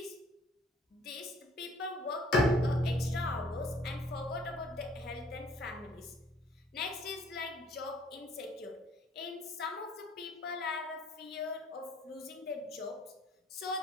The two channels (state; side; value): normal; both; correlation 0.59